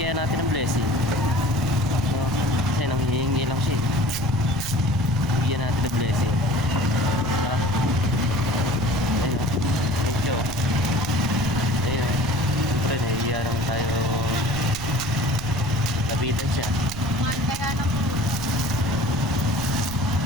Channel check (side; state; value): right; noise; rumble, 11 dB below the sound